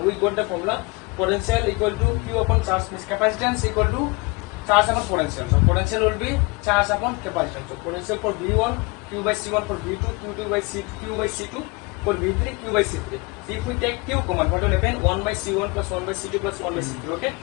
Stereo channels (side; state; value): right; quieter; 27.1 dB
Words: we got the formula. Potential equal to Q upon charge means capacitance equal to charge upon potential. So potential will be charge upon capacitance. So potential for V1 Q by C1, for V2 Q2 by C2 Q by C2, For V3, Q by C3. If we take Q common, what will happen? 1 by C1 plus 1 by C2 plus 1 by C3. Okay.